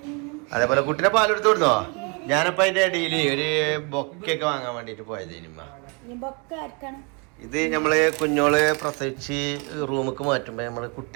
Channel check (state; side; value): quieter; left; 33.5 dB